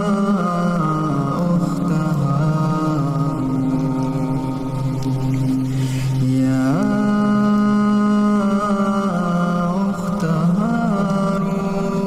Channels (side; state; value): both; identical; correlation 1.00